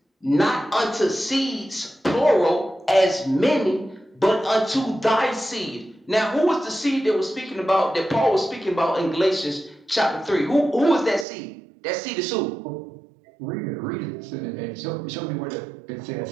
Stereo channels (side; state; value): left; drops out; at 11.2 s